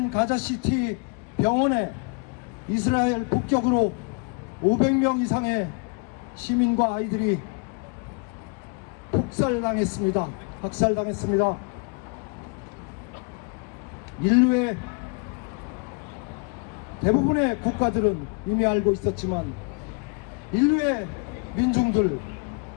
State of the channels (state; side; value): quieter; right; 34.2 dB